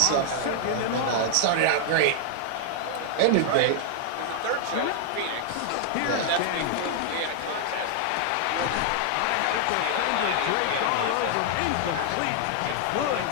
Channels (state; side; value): different; both; correlation -0.01